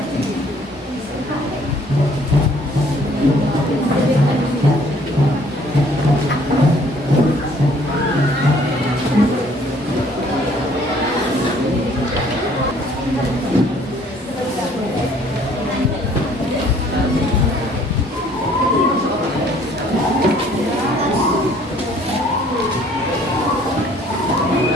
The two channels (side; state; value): both; normal; correlation 0.59